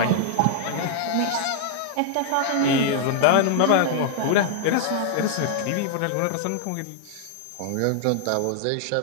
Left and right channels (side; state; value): both; different; correlation -0.01